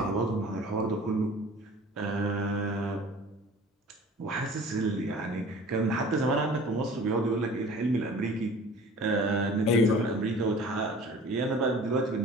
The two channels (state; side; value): normal; both; correlation 0.44